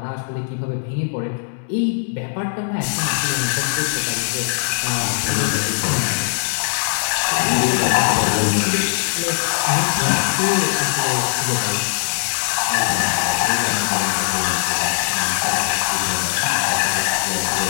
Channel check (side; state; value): right; silent; digital silence